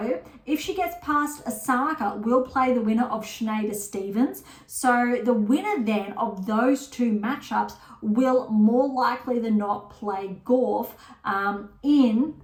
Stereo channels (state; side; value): identical; both; correlation 1.00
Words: if she gets past Osaka, will play the winner of Schneider-Stevens. So the winner then of those two matchups will more likely than not play Gauff in